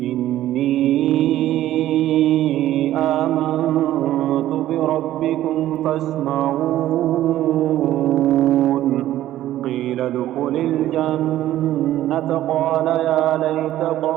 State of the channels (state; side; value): quieter; left; 13.6 dB